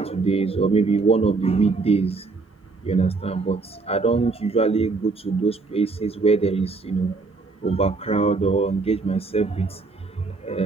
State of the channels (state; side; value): quieter; left; 3.9 dB